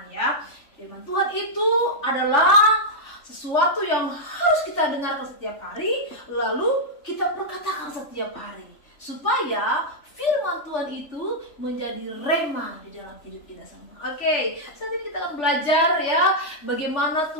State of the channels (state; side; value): late; right; 3.4 ms